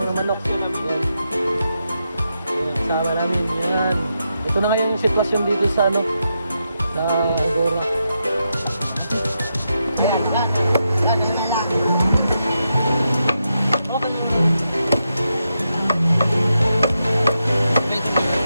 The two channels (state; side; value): inverted; both; correlation -0.85